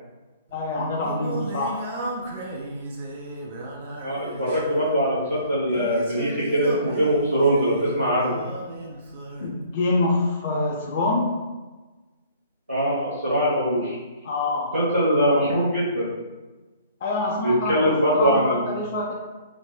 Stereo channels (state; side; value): inverted; both; correlation -0.55